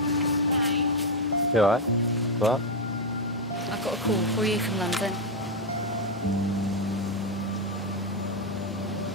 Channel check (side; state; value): both; normal; correlation 0.04